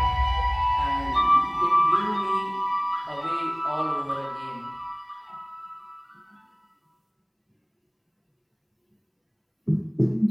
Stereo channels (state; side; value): identical; both; correlation 1.00